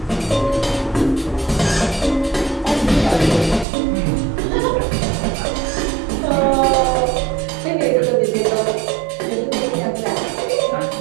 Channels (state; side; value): drops out; left; at 3.7 s